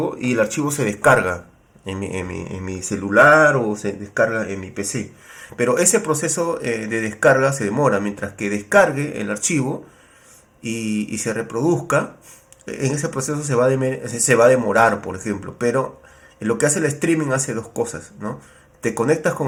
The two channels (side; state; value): both; identical; correlation 1.00